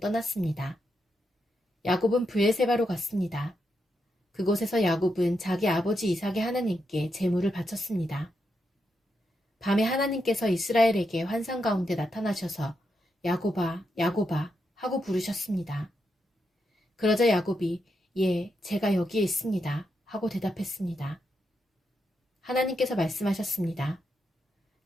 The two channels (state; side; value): normal; both; correlation 0.83